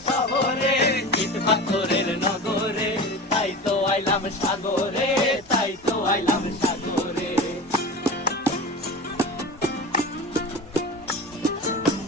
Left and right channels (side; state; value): both; normal; correlation 0.31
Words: শহরে, ইট পাথরের নগরে, তাই তো আইলাম সাগরে, তাই তো আইলাম সাগরে।